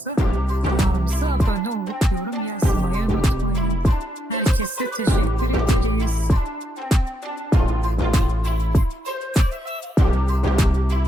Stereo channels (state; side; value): normal; both; correlation 0.81